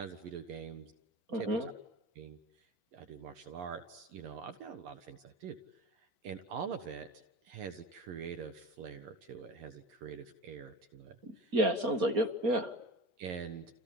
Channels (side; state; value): left; late; 4.3 ms